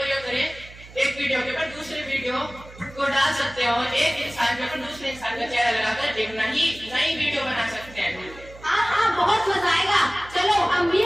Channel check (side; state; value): right; noise; hum, 19 dB below the sound